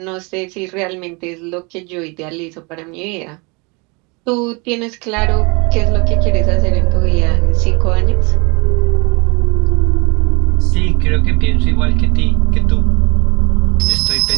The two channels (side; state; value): left; quieter; 29.4 dB